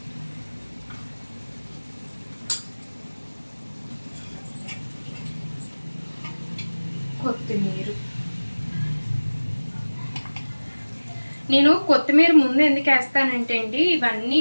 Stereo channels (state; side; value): inverted; both; correlation -1.00